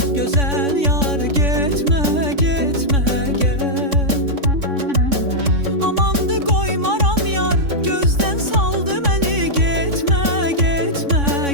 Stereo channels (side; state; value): left; late; 3.6 ms